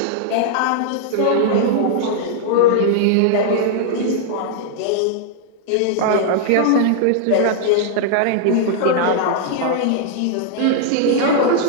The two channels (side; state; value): both; different; correlation -0.01